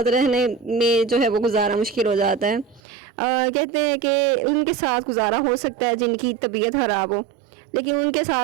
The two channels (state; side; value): drops out; left; at 2.8 s